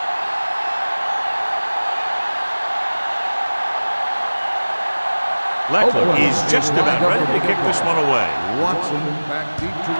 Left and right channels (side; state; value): both; inverted; correlation -1.00